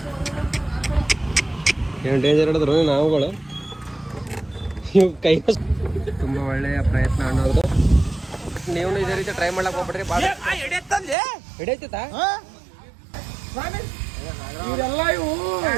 ಏನು ಡೇಂಜರ್ ಹಿಡಿದ್ರು ನಾವುಗಳು. ಇವು ಕೈ ತುಂಬ ಒಳ್ಳೆಯ ಪ್ರಯತ್ನ ಅನ್ನೋದು. ನೀವು ಇದೇ ರೀತಿ ಟ್ರೈ ಮಾಡ್ಲಕ್ ಹೋಗ್ಬಿಡ್ರಿ. ಬಾಳ ಹಿಡಿಯತ್ತ ಇವರೆಲ್ಲ ಇವು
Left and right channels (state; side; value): drops out; left; at 11.2 s